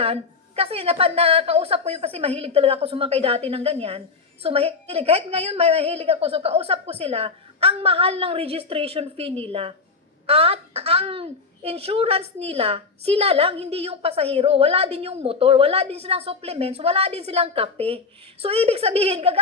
kasi nakausap ko yun kasi mahilig talaga ako sumakay dati ng ganyan. So mahilig, kahit ngayon may mahilig ako, so kausap ko sila, ang mahal ng registration fee nila. At ang insurance nila, sila lang, hindi yung pasahero. Wala din yung motor, wala din silang supplements, wala din silang kape. So ibig sabihin,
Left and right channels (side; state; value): right; quieter; 4.5 dB